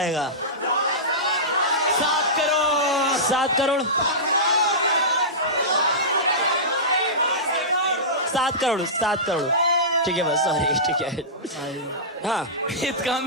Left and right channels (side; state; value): both; normal; correlation -0.18